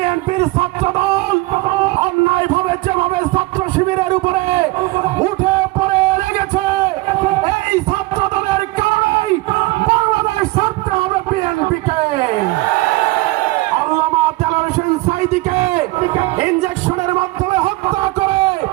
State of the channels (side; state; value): left; quieter; 21.2 dB